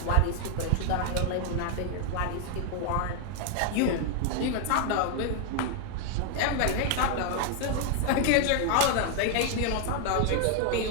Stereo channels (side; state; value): both; different; correlation 0.00